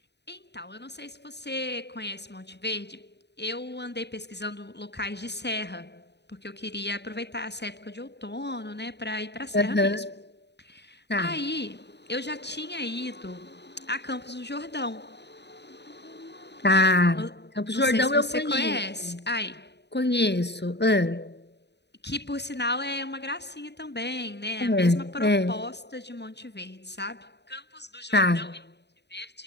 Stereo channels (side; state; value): right; late; 0.50 ms